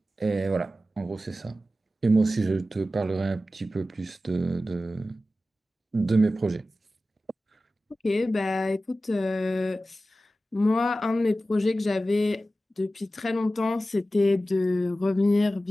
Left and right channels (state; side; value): normal; both; correlation 0.94